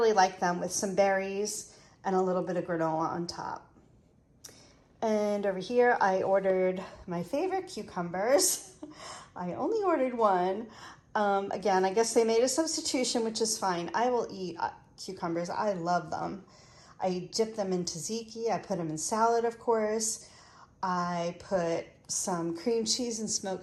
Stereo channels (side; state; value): both; identical; correlation 1.00